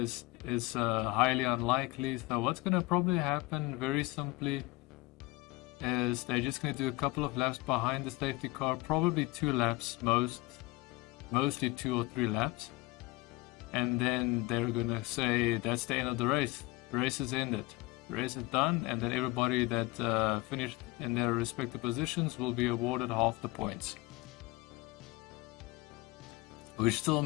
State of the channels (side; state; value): right; quieter; 21.1 dB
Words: highly unlikely. So what's going to probably happen, very simply, is they're just going to do a couple of laps behind the safety car, probably 2 laps, mostly 2 or 3 laps. And then they're going to say that's the end of the race. The race is ended. The race is done, and then everybody that finished in their respective positions will be awarded half the points. Which still